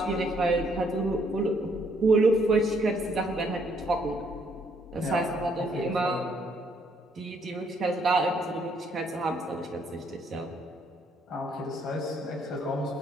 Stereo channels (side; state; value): both; normal; correlation 0.69